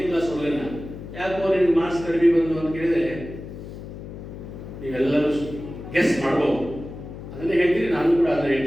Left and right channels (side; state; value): left; noise; hum, 12 dB below the sound